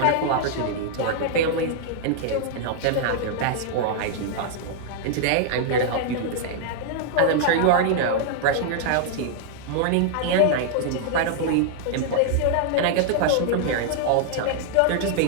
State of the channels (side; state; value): both; different; correlation -0.01